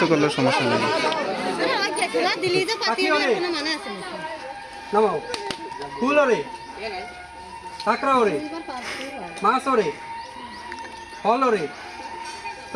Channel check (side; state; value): both; identical; correlation 1.00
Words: করলে সমস্যা নেই নামাও ফুল ওরে কাঁকড়া ওরে মাছ ওরে ফল ওরে